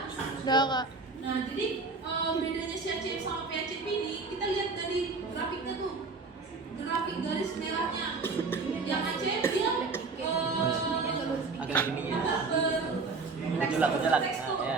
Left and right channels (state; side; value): quieter; left; 4.1 dB